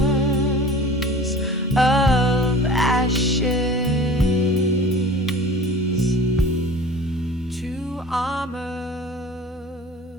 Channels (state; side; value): normal; both; correlation 0.41